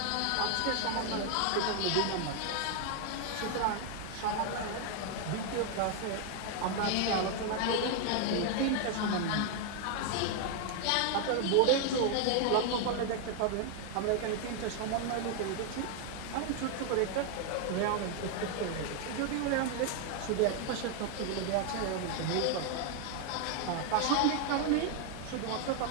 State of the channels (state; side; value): different; both; correlation 0.00